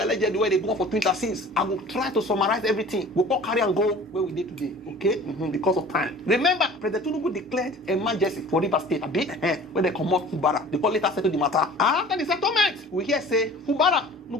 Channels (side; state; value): both; normal; correlation 0.45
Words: where they go for Twitter since. I will try to summarize everything. We'll all carry and go where we did today. Okay? Because of time. Remember, President Tinubu declared emergency for Rivers State. A bit when they come out Fubara. They call later settle the matter. After the settlement, we hear say Fubara no